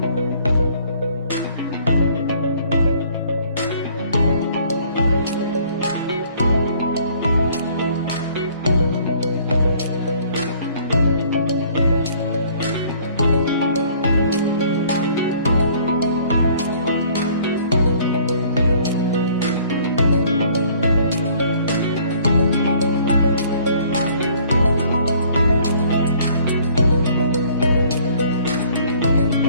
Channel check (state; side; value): inverted; both; correlation -0.57